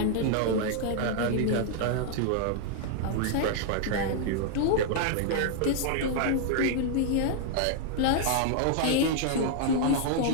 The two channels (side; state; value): both; different; correlation -0.01